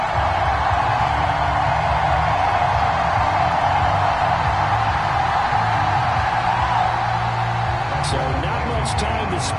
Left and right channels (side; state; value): right; noise; hum, 28 dB below the sound